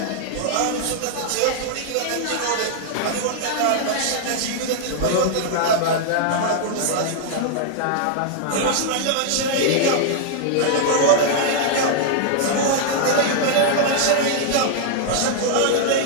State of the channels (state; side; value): different; both; correlation -0.01